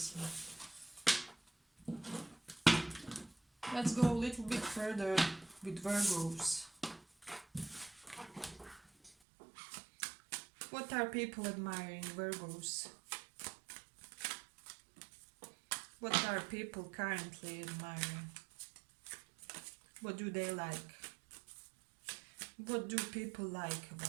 Let's go a little bit further with Virgos. What are people admiring, Virgos? What are people currently admiring? What do they like? What do people like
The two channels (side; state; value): left; drops out; at 9.1 s